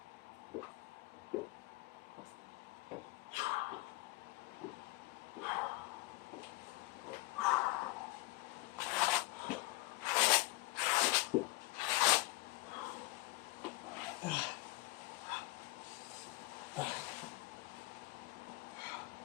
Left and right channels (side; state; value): right; quieter; 21.7 dB